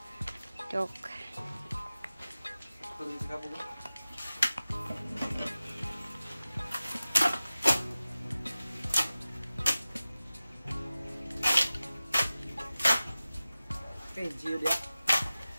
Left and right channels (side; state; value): both; inverted; correlation -0.96